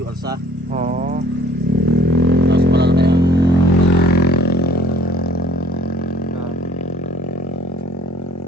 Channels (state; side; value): normal; both; correlation 0.54